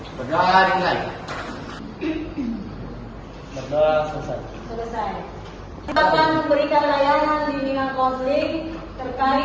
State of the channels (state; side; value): identical; both; correlation 1.00